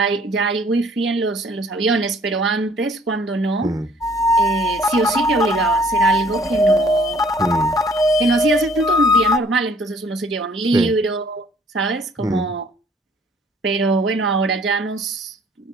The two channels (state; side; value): normal; both; correlation 0.58